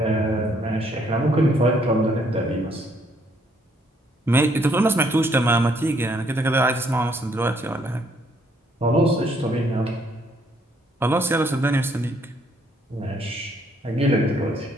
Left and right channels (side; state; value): both; normal; correlation 0.68